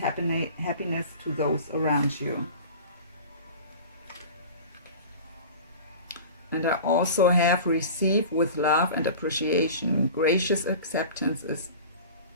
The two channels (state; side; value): inverted; both; correlation -0.37